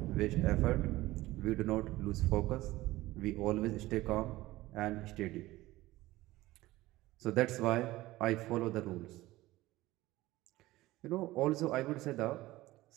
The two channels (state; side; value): quieter; left; 17.8 dB